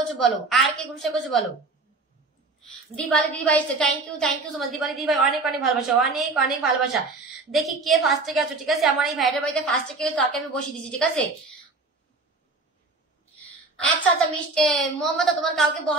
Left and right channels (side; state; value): left; quieter; 3.5 dB